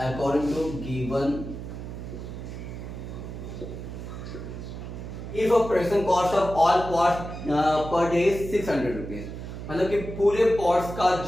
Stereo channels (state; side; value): noise; right; hum, 9 dB below the sound